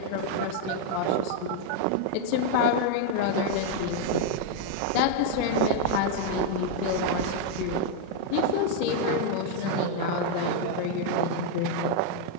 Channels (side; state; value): both; different; correlation 0.00